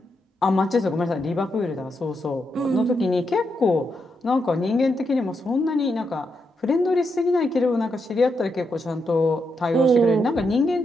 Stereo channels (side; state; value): both; normal; correlation 0.82